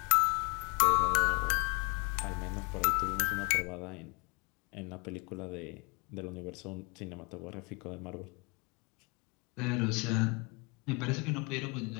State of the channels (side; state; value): right; quieter; 30.9 dB